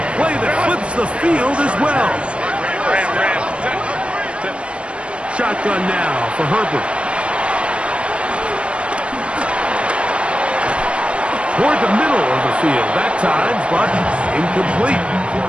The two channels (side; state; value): left; late; 0.059 ms